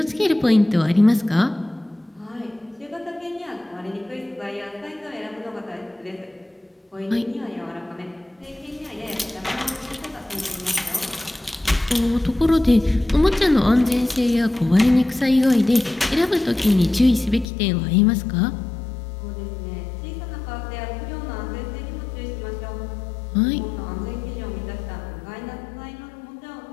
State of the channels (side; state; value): right; drops out; at 17.4 s